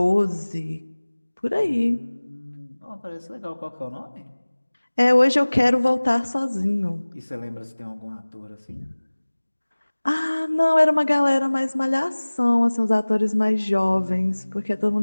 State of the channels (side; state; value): both; inverted; correlation -1.00